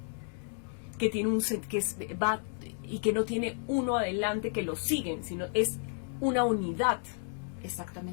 que tiene y que no tiene uno adelante que lo siguen, sino es una unidad.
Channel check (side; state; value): right; silent; 56 dB below the other